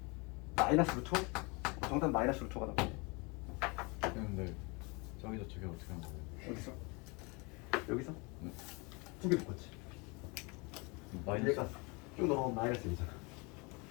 마이너스 루트 5? 정답 마이너스 루트 5가 나오네. 근데 저기서 저게 어떻게 하는 거예요? 어디서? 여기서? 네. 두 개 묶었지. 얘가 쭉 넘어가면 마이너스 1이잖아.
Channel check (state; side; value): quieter; right; 29.0 dB